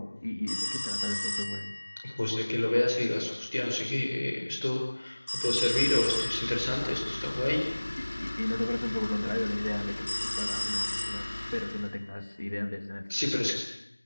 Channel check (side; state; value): both; inverted; correlation -1.00